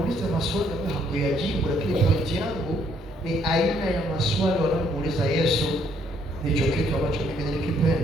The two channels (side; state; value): both; normal; correlation 0.68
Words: maswali ambayo hakuyajibu, lakini pointi yangu ni aina ya maswali wanamuuliza Yesu. Ndicho kitu ambacho mimi